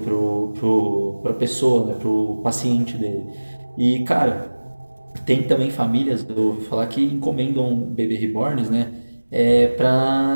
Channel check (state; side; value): inverted; both; correlation -1.00